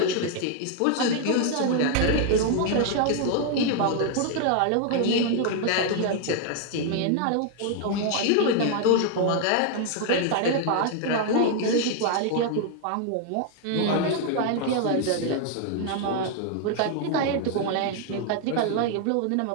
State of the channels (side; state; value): both; different; correlation 0.00